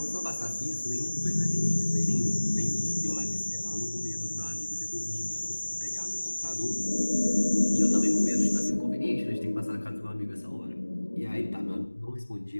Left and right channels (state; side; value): inverted; both; correlation -1.00